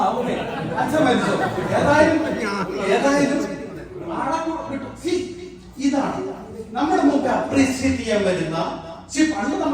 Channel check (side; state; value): both; identical; correlation 1.00